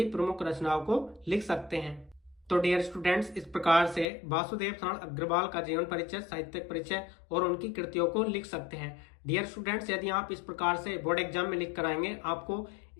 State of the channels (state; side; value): drops out; right; at 4.0 s